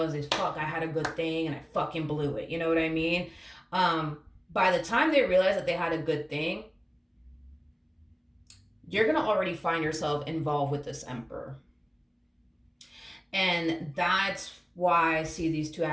fuck, I had a good thing and I fucking blew it. You know what I mean? By the time they realize that they had a good thing, you're going to already find yourself involved with this emperor. And that's why I see these two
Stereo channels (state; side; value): identical; both; correlation 1.00